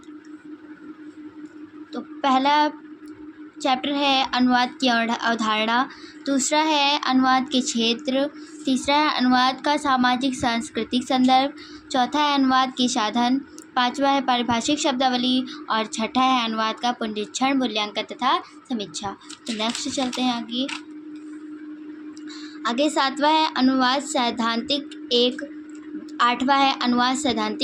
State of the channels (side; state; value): both; identical; correlation 1.00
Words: तो पहला चैप्टर है अनुवाद की अवधारणा, दूसरा है अनुवाद के क्षेत्र, तीसरा है अनुवाद का सामाजिक सांस्कृतिक संदर्भ, चौथा है अनुवाद के साधन, पांचवा है पारिभाषिक शब्दावली और छठा है अनुवाद का पुनरीक्षण, मूल्यांकन तथा समीक्षा। तो नेक्स्ट चलते हैं आगे सातवां है अनुवाद सैद्धांतिक 1, आठवां है अनुवाद